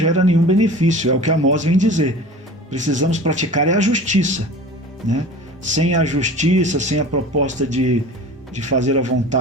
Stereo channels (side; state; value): both; normal; correlation 0.38